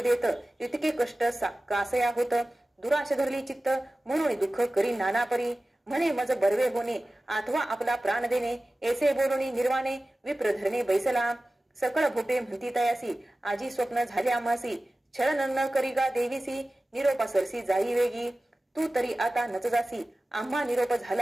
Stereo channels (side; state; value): both; normal; correlation 0.96